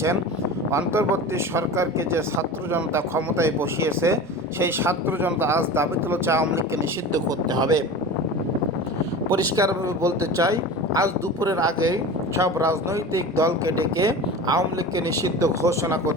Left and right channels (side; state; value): both; normal; correlation 0.33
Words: অন্তর্বর্তী সরকারকে যে ছাত্র জনতা ক্ষমতায় বসিয়েছে সেই ছাত্র জনতা আজ দাবি তুলেছে আওয়ামী লীগকে নিষিদ্ধ করতে হবে। পরিষ্কারভাবে বলতে চাই, আজ দুপুরের আগেই সব রাজনৈতিক দলকে ডেকে আওয়ামী লীগকে নিষিদ্ধ ঘোষণা